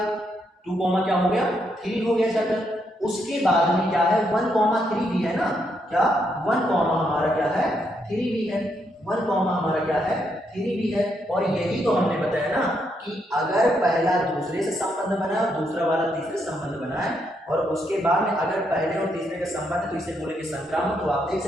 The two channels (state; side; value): normal; both; correlation 0.77